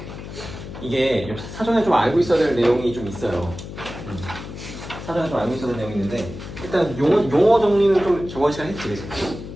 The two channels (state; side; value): noise; left; hum, 11 dB below the sound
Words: 이게 사전에 좀 알고 있어야 될 내용이 좀 있어요. 사전에 좀 알고 있어야 될 내용이 있는데 일단 용어 정리는 좀 저번 시간에 했지, 그치?